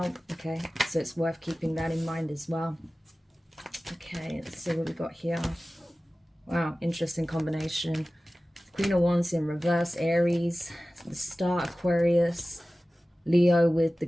okay? So it's worth keeping that in mind as well. Okay, let's see what we got here. Wow, interesting combination. Queen of Wands in reverse, Aries, the Star, Aquarius, Leo with the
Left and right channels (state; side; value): normal; both; correlation 0.96